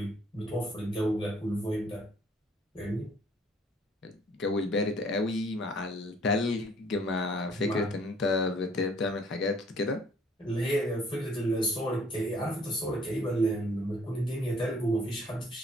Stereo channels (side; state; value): both; normal; correlation 0.59